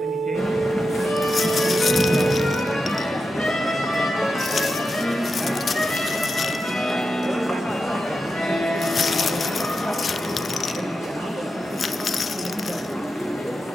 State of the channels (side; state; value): both; normal; correlation 0.89